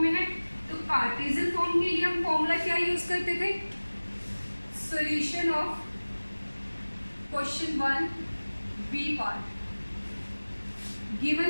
में है। तो कार्टेशियन फॉर्म के लिए हम फॉर्मूला क्या यूज करते थे? Solution of question 1 B part. Given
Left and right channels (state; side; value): inverted; both; correlation -1.00